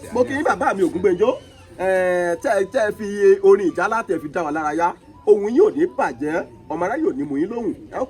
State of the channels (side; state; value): both; identical; correlation 1.00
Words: mo kí yín bàbá mi Ògúngbẹ́njọ́. tẹ́ fi orin ìjálá tẹ́ fi dá wa lára yá ohun yìí ò ní bàjẹ́ ọmọ aráyè ò ní mú yín lóhùn ẹ ó